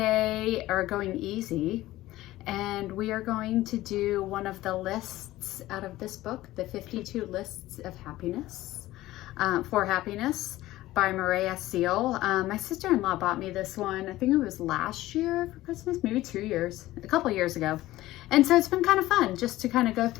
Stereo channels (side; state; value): right; quieter; 16.4 dB